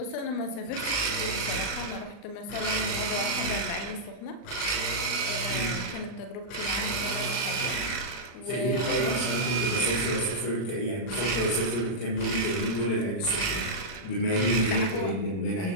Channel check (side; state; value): right; late; 39 ms